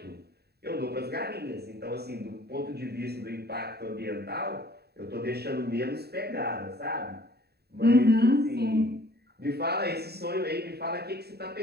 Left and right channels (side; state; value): left; late; 0.47 ms